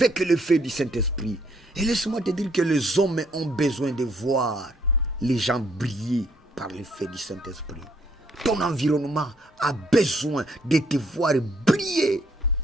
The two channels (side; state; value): both; normal; correlation 0.68